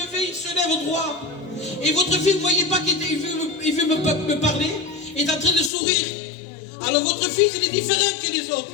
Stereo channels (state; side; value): drops out; right; at 5.7 s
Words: il se lève au droit. Et votre fils, vous ne voyez pas qu'il veut me parler, il est en train de sourire. Alors votre fils, il est différent que les autres.